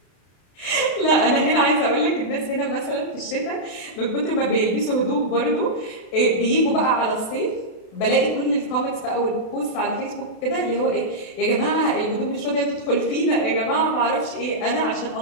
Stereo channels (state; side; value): late; right; 32 ms